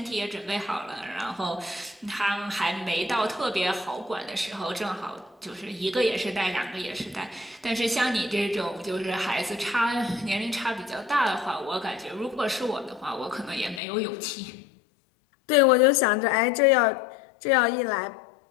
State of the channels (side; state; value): right; drops out; at 13.8 s